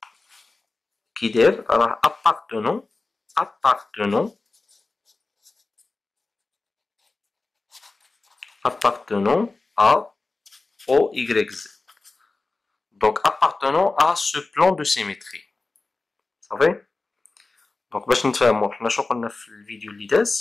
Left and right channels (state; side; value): quieter; right; 3.5 dB